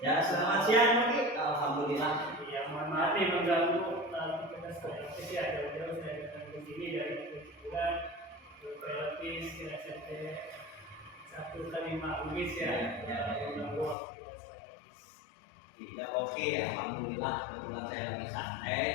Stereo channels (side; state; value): right; drops out; at 14.0 s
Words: Ya, selamat siang Oki. Alhamdulillah. Ya, mohon maaf nih mengganggu aktivitas saya. Jadi ada jauh saya datang ke sini dari bulan relatif kira SMP 1 Umis ya. Mengganggu aktivitas saya. Tidak oke, alhamdulillah. Kebetulan saya lagi santai.